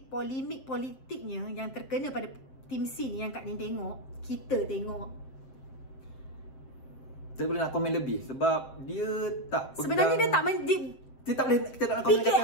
polemik politiknya yang terkena pada tim C ni yang Kak Nin tengok, kita tengok. Saya boleh nak komen lebih sebab dia tak pegang. Sebenarnya dia tak kita tak boleh, kita tak nak komen kata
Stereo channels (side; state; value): right; late; 7.6 ms